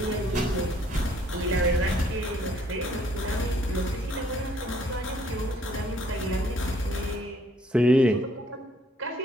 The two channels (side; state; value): both; normal; correlation 0.64